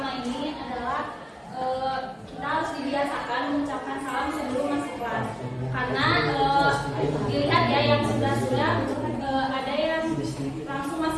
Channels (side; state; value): both; identical; correlation 1.00